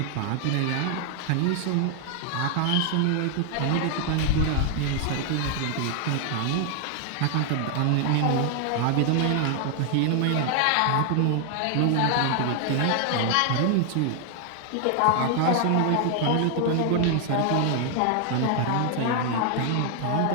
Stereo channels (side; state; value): both; different; correlation 0.00